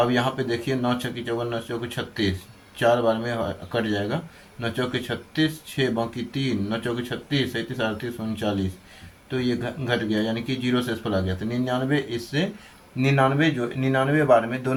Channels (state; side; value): identical; both; correlation 1.00